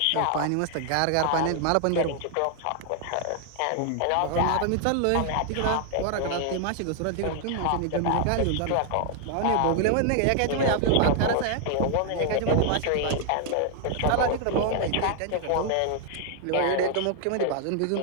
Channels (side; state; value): both; different; correlation 0.00